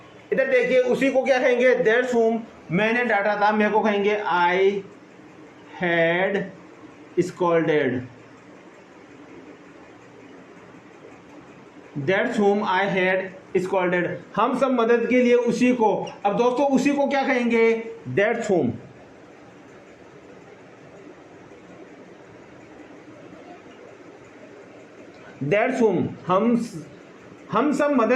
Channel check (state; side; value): identical; both; correlation 1.00